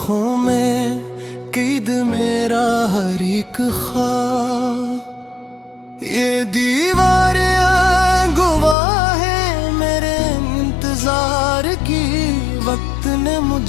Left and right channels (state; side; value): drops out; right; at 8.8 s